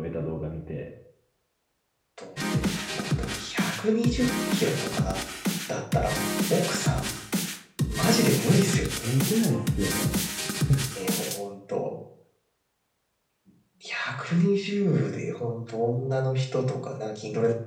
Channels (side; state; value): both; identical; correlation 1.00